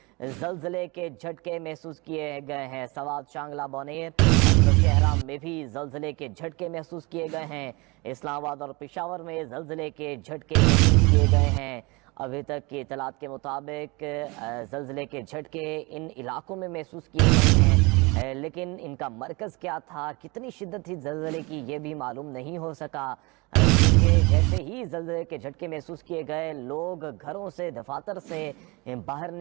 जलजले के झटके महसूस किए गए हैं। सवात शांगला बोनेर नौशहरा में भी जलजले के झटके महसूस किए गए हैं। इस्लामाबाद और पेशावर में जलजले के झटके महसूस किए गए हैं। अभी तक की इतलात के मुताबिक ज़लज़ले के झटके इन इलाकों में महसूस किए गए हैं, लेकिन इनका मरकज़ क्या था, कितनी शिद्दत थी ज़लज़ले की, ये भी मालूम नहीं हो सका। जैसे ही ज़लज़ले के झटके महसूस किए गए, लोग घरों से, दफातर से बाहर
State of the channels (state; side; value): quieter; left; 26.3 dB